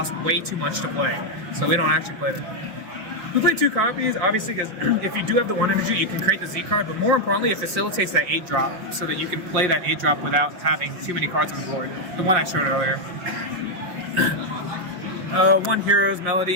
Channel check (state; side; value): late; left; 5.6 ms